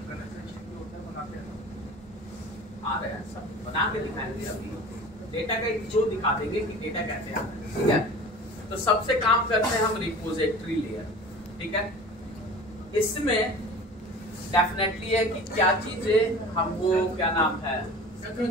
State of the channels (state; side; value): normal; both; correlation 0.39